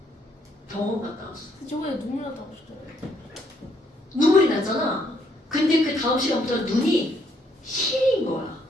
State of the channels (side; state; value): both; normal; correlation 0.70